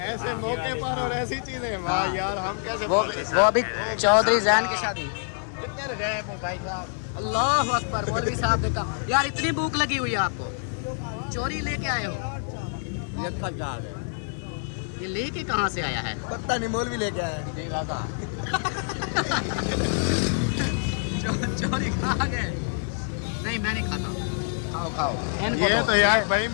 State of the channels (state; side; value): silent; right; digital silence